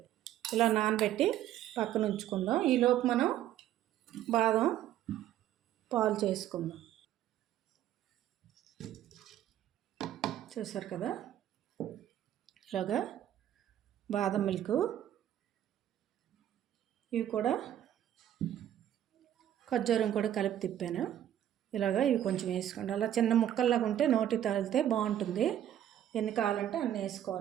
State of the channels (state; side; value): quieter; left; 11.5 dB